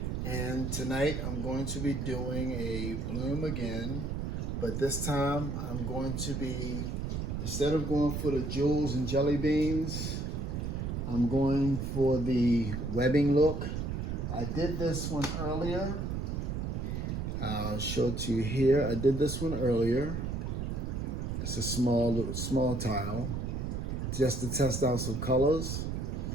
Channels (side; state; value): right; noise; rumble, 3 dB below the sound